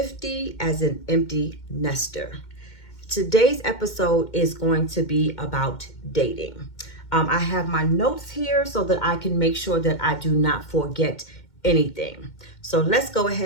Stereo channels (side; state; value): right; late; 2.1 ms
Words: as an empty nester. Today's episode is going to be about dating. I have my notes here so that I can make sure that I do not forget anything. So let's go